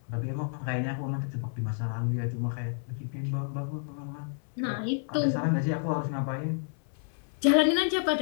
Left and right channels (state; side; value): silent; right; 58 dB below the other